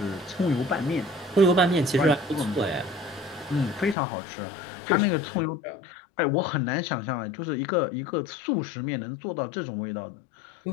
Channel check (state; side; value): drops out; right; at 4.0 s